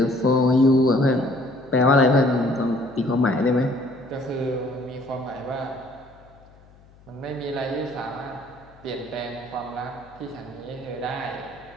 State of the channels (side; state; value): left; noise; hum, 26 dB below the sound